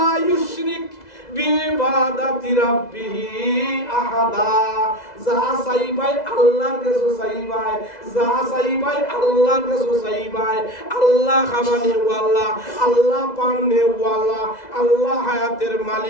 ইউশরিক বিইবাদাতি রাব্বিহি আহাদা যা চাইবাই আল্লাহর কাছে চাইবাই যা চাইবাই আল্লাহর কাছে চাইবাই আল্লাহ খাবানি ওয়ালা আল্লাহ পানে ওয়ালা আল্লাহ হায়াতের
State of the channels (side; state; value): right; late; 2.0 ms